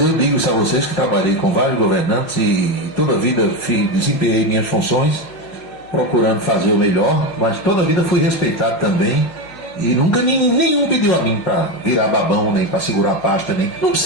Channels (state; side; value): late; right; 5.6 ms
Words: digo isso a vocês que trabalhei com vários governantes e toda a vida desempenhei minhas funções procurando fazer o melhor, mas toda a vida fui respeitado também e nunca nenhum pediu a mim para virar babão, nem para segurar a pasta, nem. Não